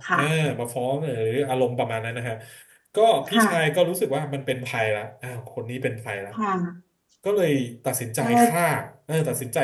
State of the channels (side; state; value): both; identical; correlation 1.00